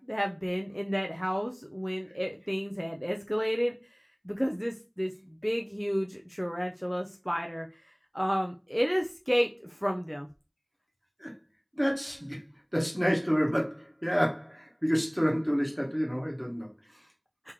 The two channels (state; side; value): identical; both; correlation 1.00